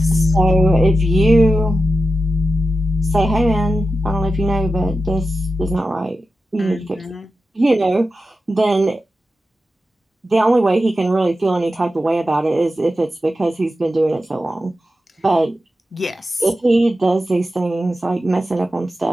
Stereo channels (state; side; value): normal; both; correlation 0.92